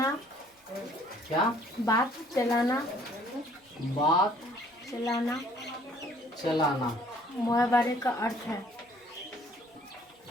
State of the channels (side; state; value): both; normal; correlation 0.58